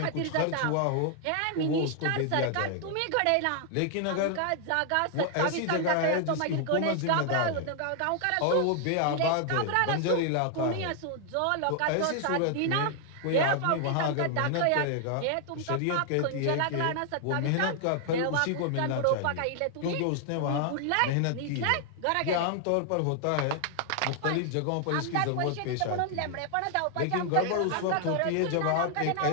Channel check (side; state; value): both; different; correlation 0.00